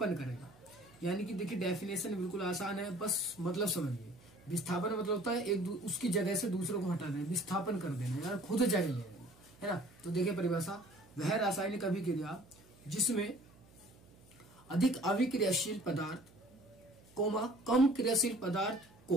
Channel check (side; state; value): right; noise; hum, 26 dB below the sound